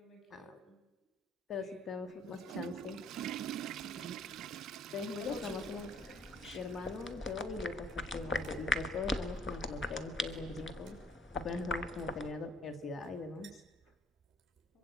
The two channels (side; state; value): both; normal; correlation 0.62